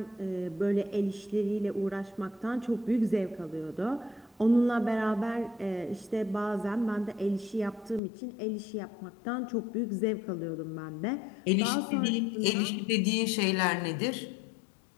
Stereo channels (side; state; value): right; drops out; at 8.0 s